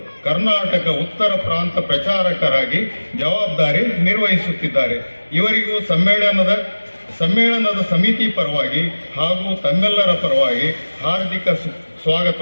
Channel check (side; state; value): both; inverted; correlation -1.00